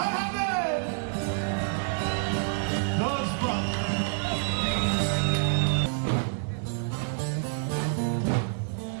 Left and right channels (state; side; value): silent; left; digital silence